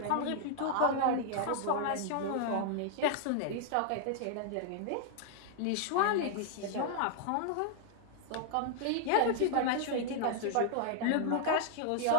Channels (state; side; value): different; both; correlation -0.01